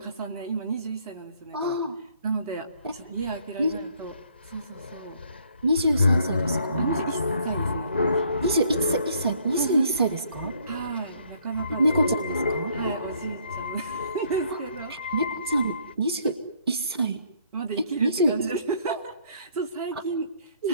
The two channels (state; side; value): inverted; both; correlation -0.64